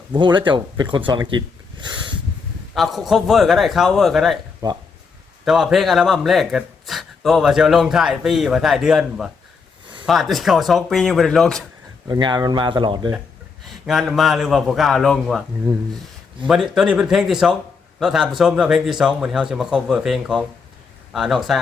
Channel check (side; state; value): right; quieter; 5.0 dB